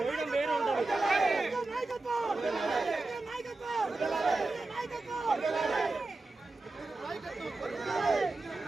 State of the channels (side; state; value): left; quieter; 3.2 dB